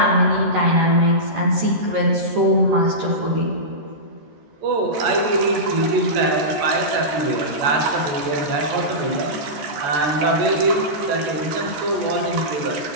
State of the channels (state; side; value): late; left; 13 ms